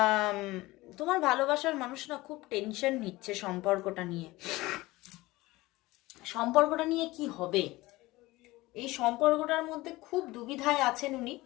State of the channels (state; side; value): quieter; right; 19.7 dB